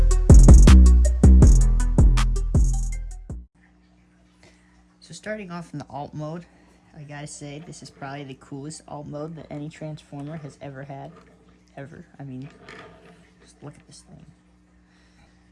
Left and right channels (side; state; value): both; identical; correlation 1.00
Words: So starting off in the alt mode, I gotta say this is probably the coolest alt mode that any Transformer has ever had. Ever. I mean, just look at this thing.